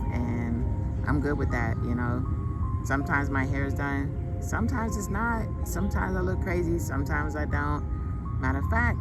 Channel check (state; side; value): identical; both; correlation 1.00